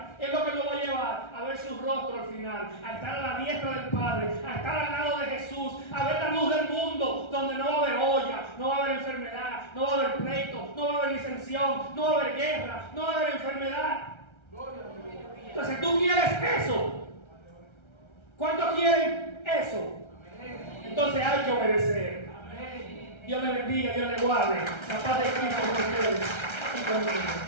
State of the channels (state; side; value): late; right; 1.3 ms